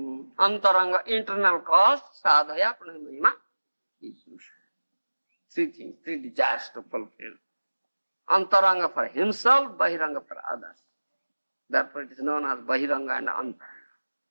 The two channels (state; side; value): inverted; both; correlation -1.00